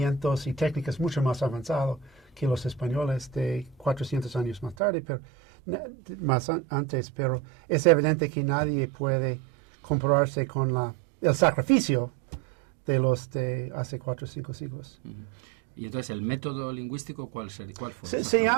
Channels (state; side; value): drops out; left; at 4.8 s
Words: y técnicas mucho más avanzados que los españoles de 400 años más tarde, pero antes, pero es evidente que nadie puede compararse con el sacrificio de los de hace 4 o 5 siglos. Y entonces, ¿el método lingüístico cuál fue? Se